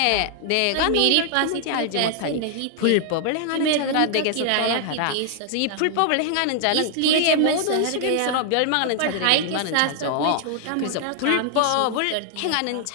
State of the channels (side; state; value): both; different; correlation 0.00